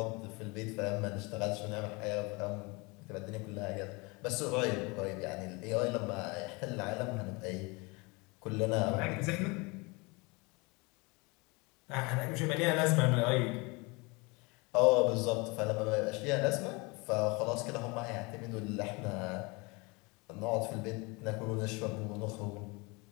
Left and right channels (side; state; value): right; quieter; 27.1 dB